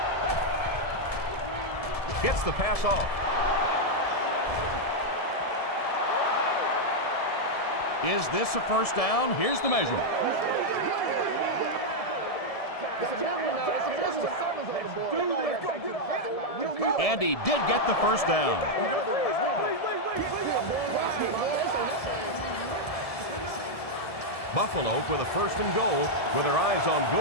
Gets the pass off. Is this a first down? Here's the measurement. And he did get the first down. Buffalo with a 1st and goal with their eyes on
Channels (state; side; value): late; right; 1.7 ms